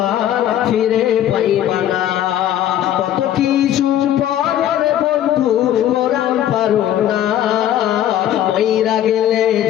ফিরে পাইবা না। কত কিছু পরের বন্ধু কোরআন পারো না, মইরা গেলে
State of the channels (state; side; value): quieter; right; 11.5 dB